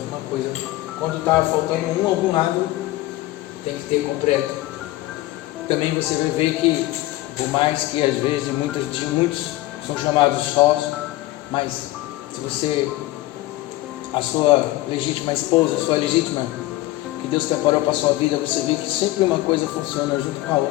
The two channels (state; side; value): quieter; right; 17.3 dB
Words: coisa. Quando está faltando algum lado, tem que ter completo. Também você vai ver que, por mais que às vezes muitos são chamados sós, mas se a sua legítima esposa, a sua legítima, que Deus preparou para a sua vida, você vê que sempre uma coisa funciona junto com a